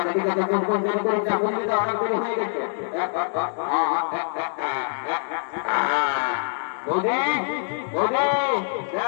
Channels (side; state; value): right; silent; digital silence